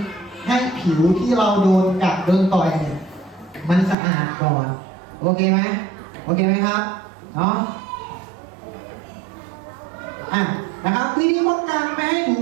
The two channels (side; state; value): left; drops out; at 4.0 s